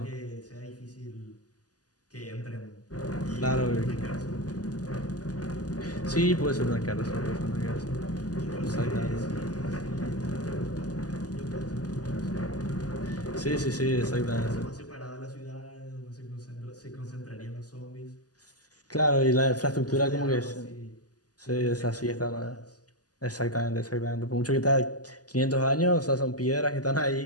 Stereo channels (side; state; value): right; late; 0.67 ms